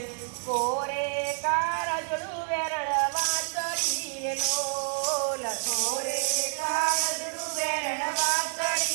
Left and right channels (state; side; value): silent; left; digital silence